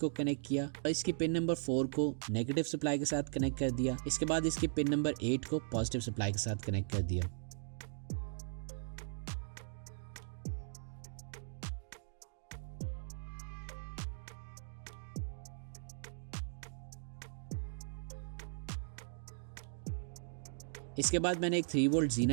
कनेक्ट किया और इसकी पिन नंबर 4 को नेगेटिव सप्लाई के साथ कनेक्ट कर दिया। इसके बाद इसकी पिन नंबर 8 को पॉजिटिव सप्लाई के साथ कनेक्ट कर दिया। इसके बाद मैंने एक 3 वोल्ट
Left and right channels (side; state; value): left; silent; digital silence